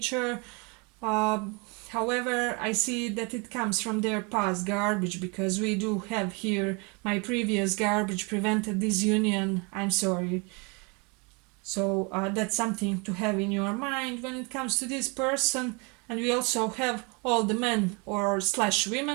uh, However, I see that it comes from their past garbage, because we do have here my previous garbage prevented this union. I'm sorry. So that's something to have in your mind when it comes to this person. And we also have all the men or slash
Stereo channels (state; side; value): quieter; left; 31.2 dB